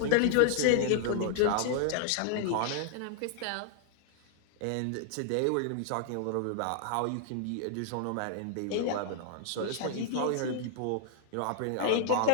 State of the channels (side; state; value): both; different; correlation -0.01